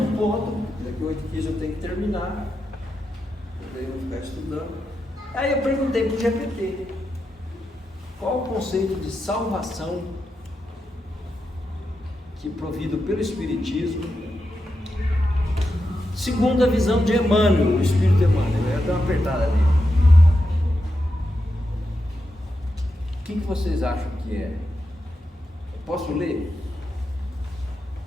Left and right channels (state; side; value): normal; both; correlation 0.87